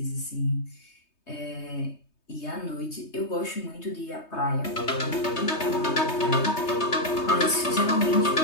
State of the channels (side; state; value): right; late; 3.2 ms